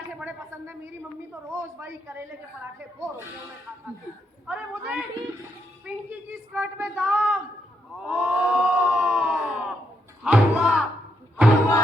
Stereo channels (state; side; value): normal; both; correlation 0.79